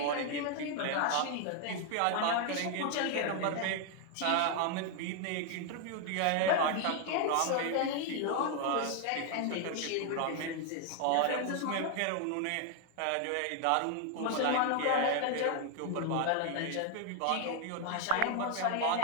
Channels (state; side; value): different; both; correlation 0.00